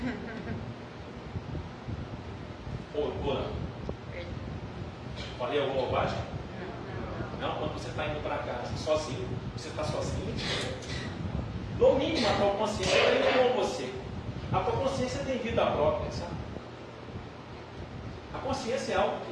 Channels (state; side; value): identical; both; correlation 1.00